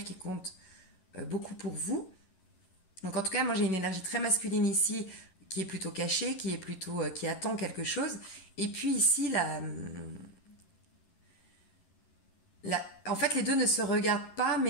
qui compte beaucoup pour vous. Donc en tout cas, moi j'ai une énergie très masculine ici, qui est plutôt cachée, qui attend quelque chose. Et puis ici, en fait, les deux ne se regardent pas,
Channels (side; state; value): right; late; 11 ms